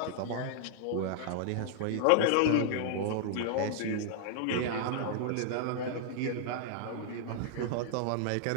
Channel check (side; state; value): both; different; correlation -0.01